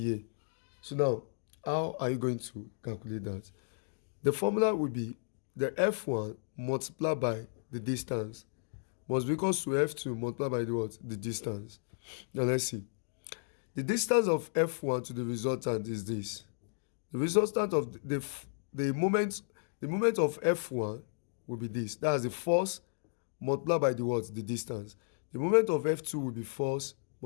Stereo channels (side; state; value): right; silent; digital silence